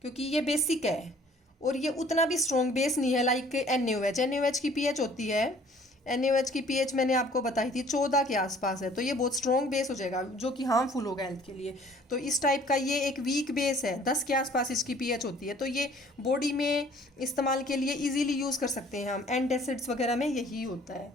क्योंकि ये बेसिक है और ये उतना भी स्ट्रॉन्ग बेस नहीं है लाइक NaOH। NaOH की pH होती है, NaOH की pH मैंने आपको बताई थी 14 के आसपास है, तो ये बहुत स्ट्रॉन्ग बेस हो जाएगा जो कि हार्मफुल होगा हेल्थ के लिए। तो इस टाइप का ये एक वीक बेस है, 10 के आसपास इसकी pH होती है, तो ये बॉडी में इस्तेमाल के लिए ईजीली यूज़ कर सकते हैं हम। एंटासिड्स वगैरह में यही होता है।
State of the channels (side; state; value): both; normal; correlation 0.55